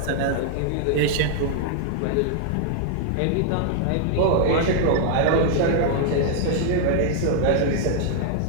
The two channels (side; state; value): both; different; correlation -0.01